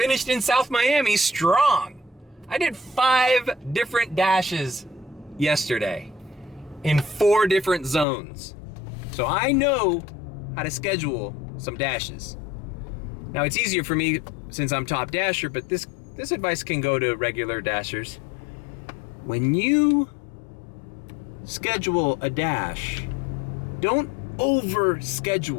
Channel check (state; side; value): drops out; right; at 8.1 s